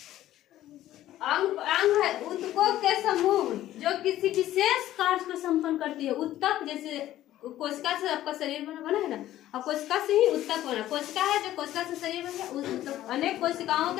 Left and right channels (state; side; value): quieter; right; 13.6 dB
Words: अंग। अंग है उत्तकों के समूह जो किसी विशेष कार्य को संपन्न करती है। उत्तक जैसे कोशिका से आपका शरीर बना है ना, और कोशिका से ही उत्तक बना। कोशिका है जो कोशिका से शरीर बना, उस अनेक कोशिकाओं